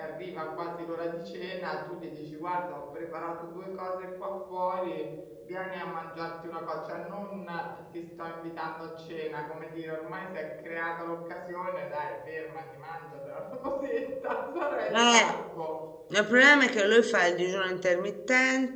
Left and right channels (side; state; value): both; identical; correlation 1.00